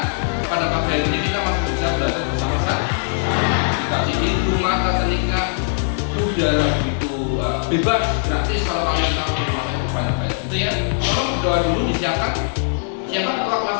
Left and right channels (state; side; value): silent; right; digital silence